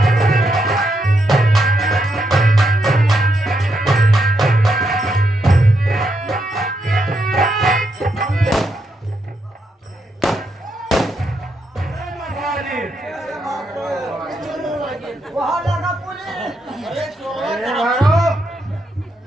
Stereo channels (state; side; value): normal; both; correlation 0.80